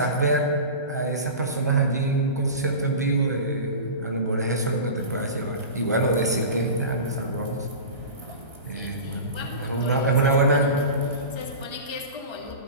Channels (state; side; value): inverted; both; correlation -0.31